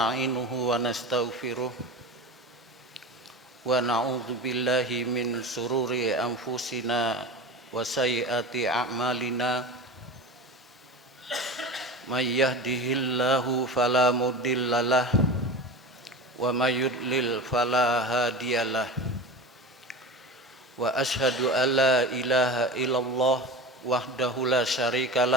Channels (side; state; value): both; normal; correlation 0.29